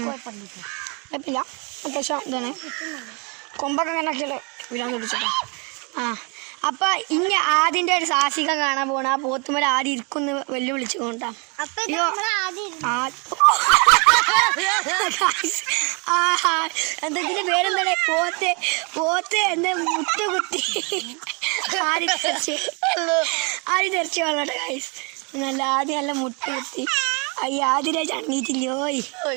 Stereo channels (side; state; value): left; quieter; 33.1 dB